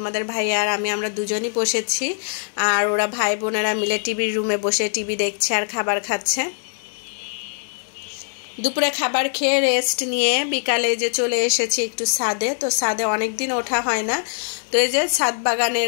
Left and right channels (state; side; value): silent; right; digital silence